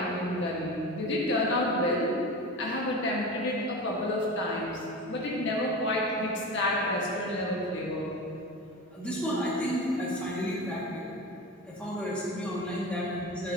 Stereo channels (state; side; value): normal; both; correlation 0.29